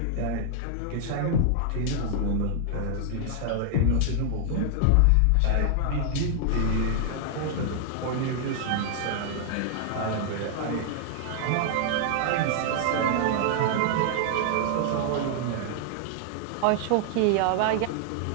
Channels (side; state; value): both; different; correlation 0.00